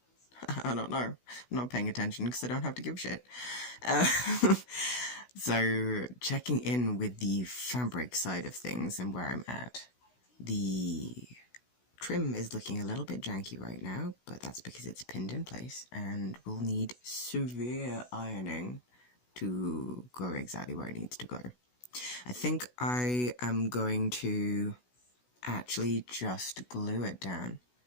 I don't know. I'm not paying attention because I don't have to give a shit. Uh, so, checking in with the fabric side of things and where I'm at. The trim is looking a little bit janky right now, but that's because it's pinned in place and will need severe ironing to go exactly where it needs to go. I think I am going to actually just glue it down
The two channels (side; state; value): right; late; 16 ms